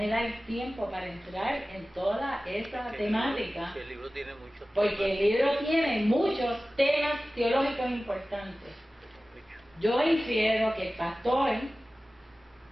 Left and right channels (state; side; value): normal; both; correlation 0.96